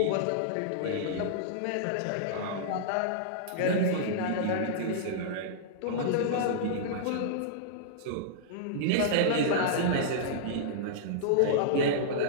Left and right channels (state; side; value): different; both; correlation -0.02